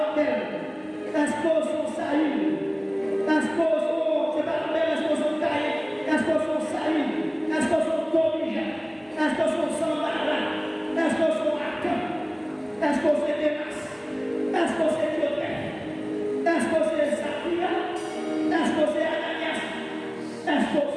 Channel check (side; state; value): both; identical; correlation 1.00